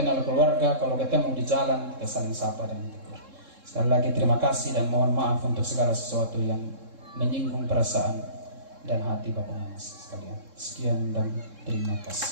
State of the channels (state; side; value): late; left; 3.7 ms